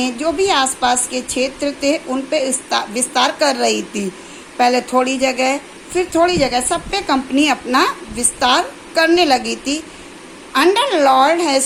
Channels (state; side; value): identical; both; correlation 1.00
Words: जो भी आसपास के क्षेत्र थे उन पे विस्तार कर रही थी। पहले थोड़ी जगह, फिर थोड़ी जगह, सब पे कंपनी अपना विस्तार करने लगी थी। Under Lord